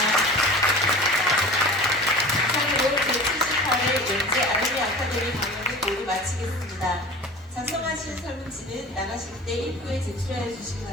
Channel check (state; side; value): normal; both; correlation 0.37